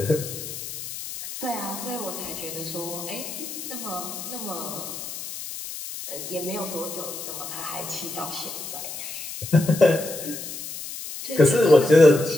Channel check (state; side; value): noise; left; hiss, 9 dB below the sound